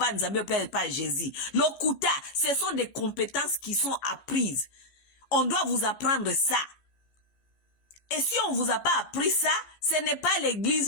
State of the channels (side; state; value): right; late; 15 ms